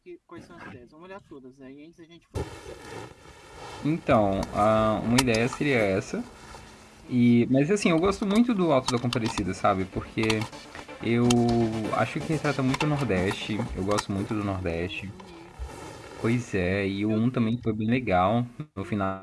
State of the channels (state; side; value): identical; both; correlation 1.00